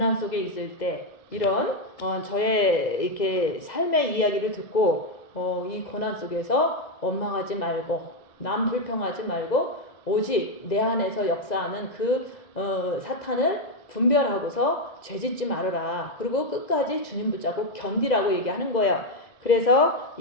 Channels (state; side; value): late; right; 2.0 ms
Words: 속에 있을 때 이런 저의 이렇게 삶의 이야기를 듣고 이 고난 속에서 원망하지 말고 남 불평하지 말고 오직 내 안에서 역사하는 그 사탄을 분별하고서 죄짓지 말아라. 그리고 끝까지 주님 붙잡고 견디라고 얘기하는 거예요. 그래서